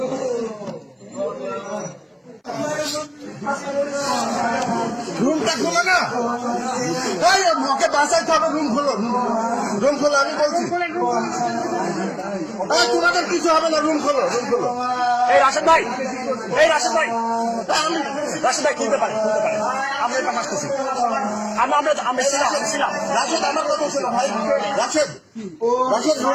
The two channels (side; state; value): both; identical; correlation 1.00